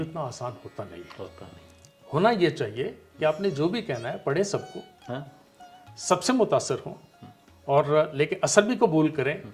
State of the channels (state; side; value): identical; both; correlation 1.00